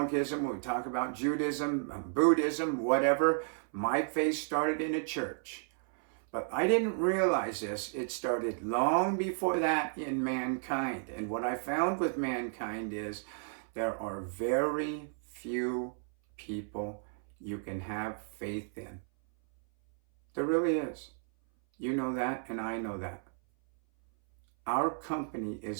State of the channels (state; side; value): silent; left; 56 dB below the other